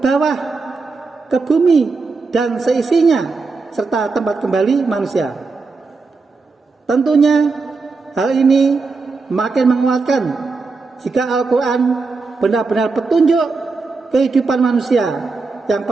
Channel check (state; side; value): quieter; left; 4.2 dB